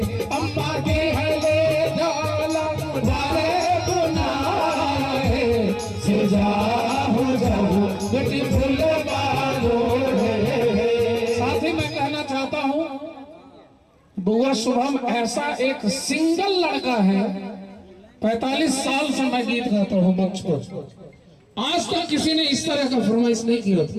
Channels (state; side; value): identical; both; correlation 1.00